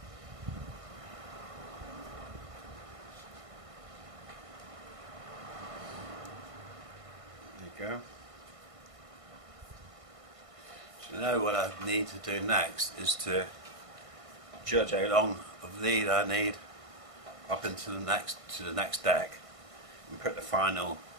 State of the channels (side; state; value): left; late; 1.5 ms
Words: There you go. So now what I need to do next is to judge how long of lead I need up into the next deck and put the final